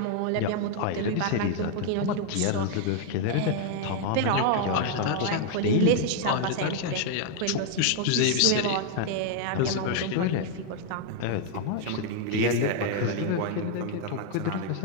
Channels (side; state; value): both; different; correlation 0.00